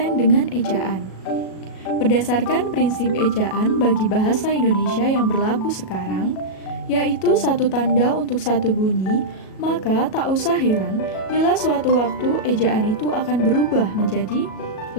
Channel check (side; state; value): right; late; 37 ms